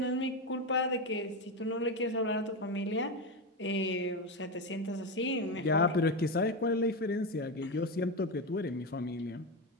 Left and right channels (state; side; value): normal; both; correlation 0.15